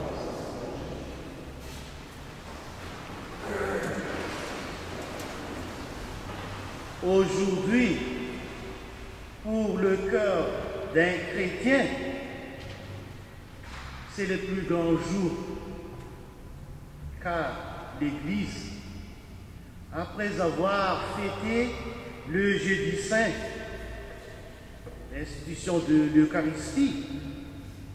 Aujourd'hui, pour le cœur d'un chrétien, c'est le plus grand jour, car l'Église, après avoir fêté le jeudi saint, l'institution de l'Eucharistie,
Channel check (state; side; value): identical; both; correlation 1.00